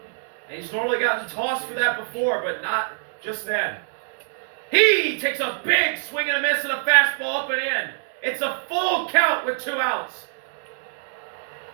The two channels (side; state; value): left; silent; digital silence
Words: And he's normally gotten tossed for that before, but not just then. He takes a big swing and a miss and a fastball up and in. It's a full count with 2 outs.